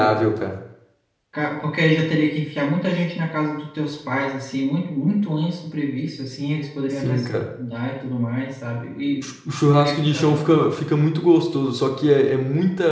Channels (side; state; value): both; identical; correlation 1.00